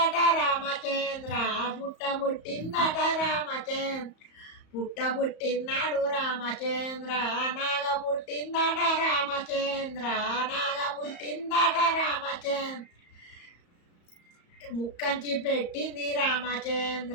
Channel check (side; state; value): right; late; 34 ms